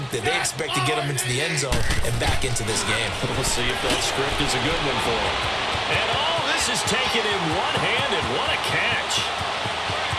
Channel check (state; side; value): identical; both; correlation 1.00